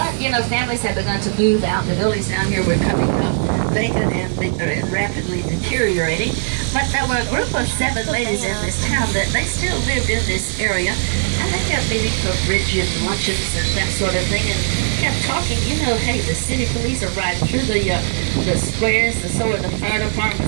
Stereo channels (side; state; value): left; silent; digital silence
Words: you know, families have begun to move out. The buildings down here were coming up vacant and rapidly deteriorating. But there were a group of 7 ladies in this town that they still lived in this area. And they kept meeting for bridge luncheons and that sort of thing. And kept talking, you know, hey, the city police are riding through the squares, and so are the fire